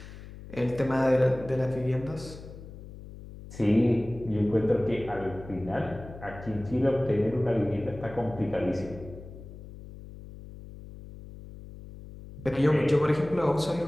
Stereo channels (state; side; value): noise; left; hum, 15 dB below the sound